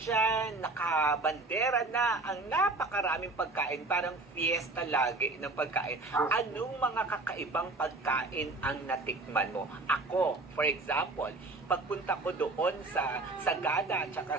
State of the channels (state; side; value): quieter; left; 3.2 dB